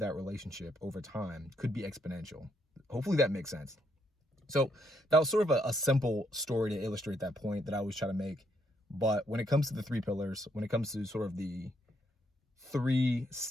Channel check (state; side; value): normal; both; correlation 0.74